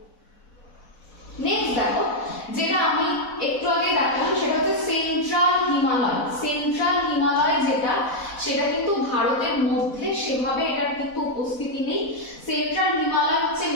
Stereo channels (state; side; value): late; right; 4.1 ms